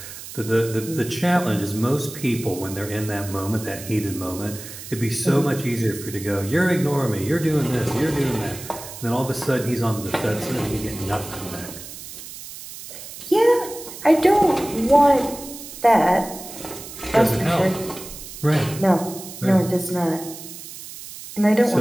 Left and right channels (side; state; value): right; noise; hiss, 13 dB below the sound